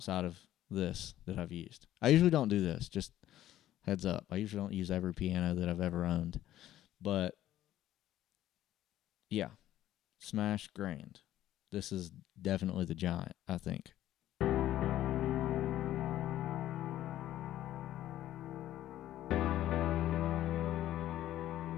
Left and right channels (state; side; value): quieter; right; 13.2 dB